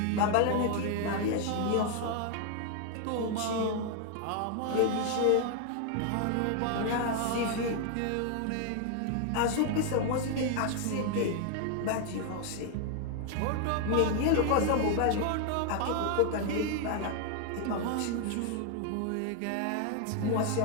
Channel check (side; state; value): both; different; correlation 0.00